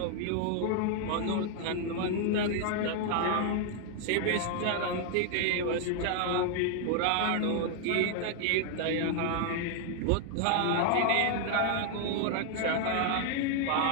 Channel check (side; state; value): both; different; correlation 0.00